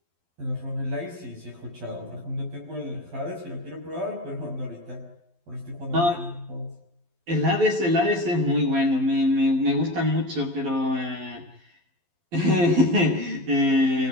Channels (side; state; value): left; late; 12 ms